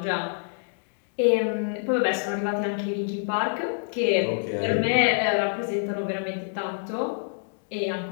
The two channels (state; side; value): silent; right; digital silence